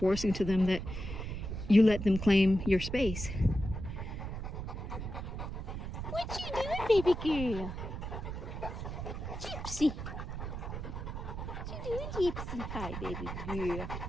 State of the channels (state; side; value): noise; right; rumble, 6 dB below the sound